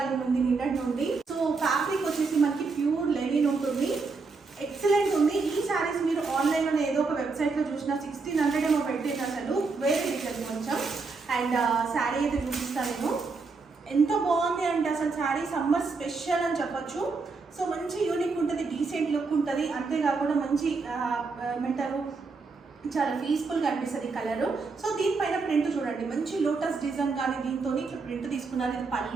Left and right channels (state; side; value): quieter; left; 4.3 dB